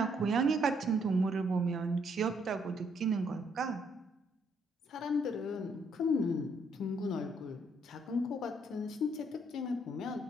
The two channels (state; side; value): normal; both; correlation 0.70